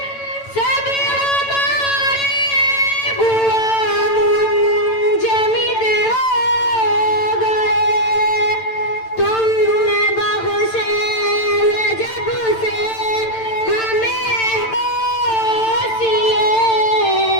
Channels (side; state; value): right; late; 9.0 ms